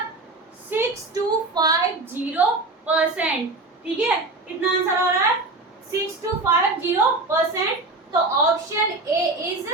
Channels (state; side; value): quieter; left; 3.1 dB